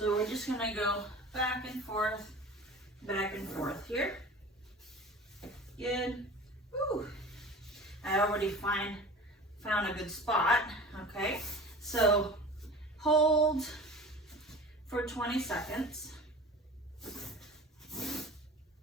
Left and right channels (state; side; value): normal; both; correlation 0.38